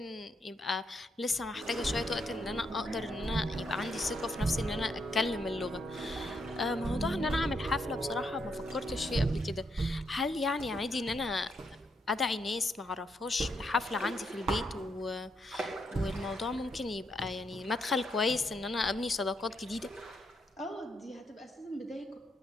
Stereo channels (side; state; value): both; normal; correlation 0.78